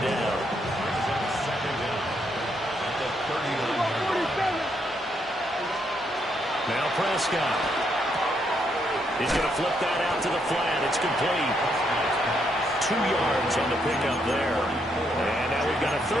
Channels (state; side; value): normal; both; correlation 0.76